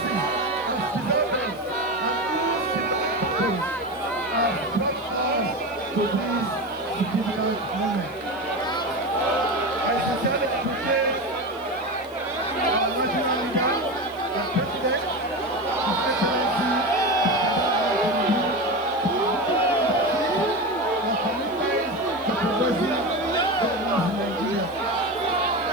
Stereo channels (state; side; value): noise; left; hiss, 25 dB below the sound